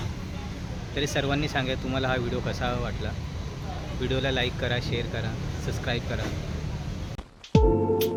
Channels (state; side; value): identical; both; correlation 1.00